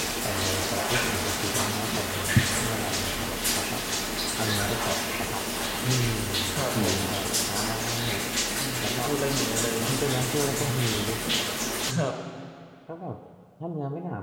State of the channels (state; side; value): identical; both; correlation 1.00